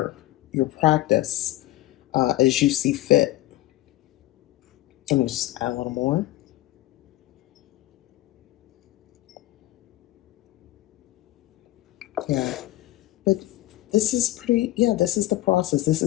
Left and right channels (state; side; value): quieter; right; 16.4 dB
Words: your practice as you see fit. Let me just add a little more. Yeah, but this is pretty, yeah, this is the process. This